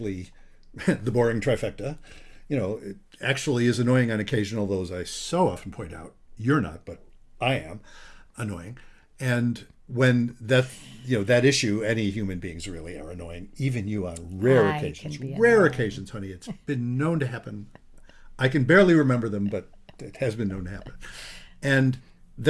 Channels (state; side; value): identical; both; correlation 1.00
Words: the boring trifecta. It actually is annoying on occasion, although as I so often point out, you're not, but I am annoying. when that issue, any human beings really are annoying, even you on rare I occasions. can be Rare annoying. occasions, honey. It's been known to happen. I can barely remember them, but it has been known to happen. And